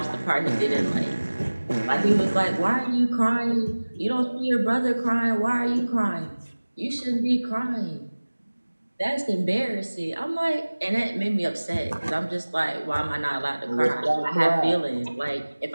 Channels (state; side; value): inverted; both; correlation -1.00